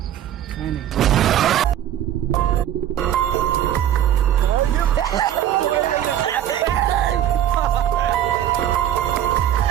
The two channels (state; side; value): quieter; left; 11.1 dB